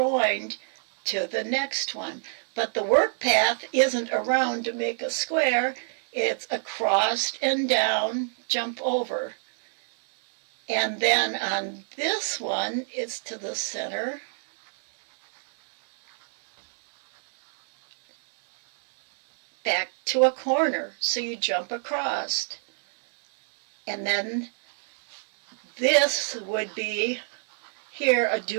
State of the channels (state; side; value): silent; left; digital silence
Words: to the next one. But the work path isn't around to make a square, it's across and down, jump over. And then on this one, it's to the center. Back to a corner, so you jump across. And then this would be here a